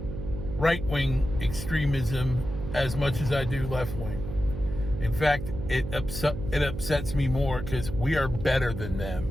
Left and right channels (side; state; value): right; noise; hum, 7 dB below the sound